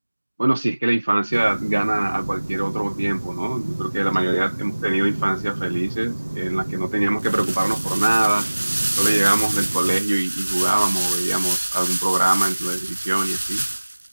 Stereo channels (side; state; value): both; inverted; correlation -1.00